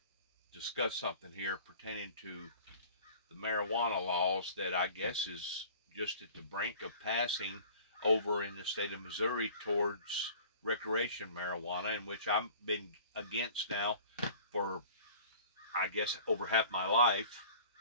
discuss something here pertaining to the marijuana laws that I guess is just at the brink of passing over in the state of Missouri towards recreation marijuana, in which I've been against now for, I guess, over half my life.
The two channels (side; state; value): both; inverted; correlation -0.46